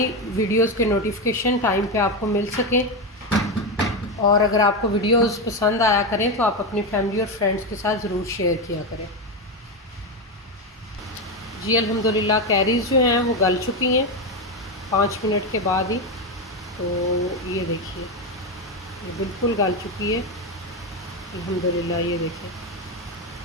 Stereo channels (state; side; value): normal; both; correlation 0.12